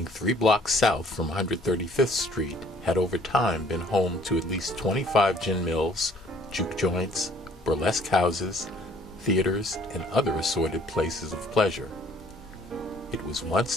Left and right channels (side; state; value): both; normal; correlation 0.58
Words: 3 blocks south from 135th Street, had over time been home to at least 25 gin mills, juke joints, burlesque houses, theaters, and other assorted places of pleasure. It was once